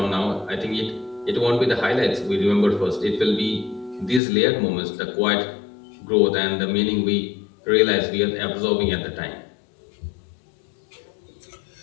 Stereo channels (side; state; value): right; drops out; at 4.2 s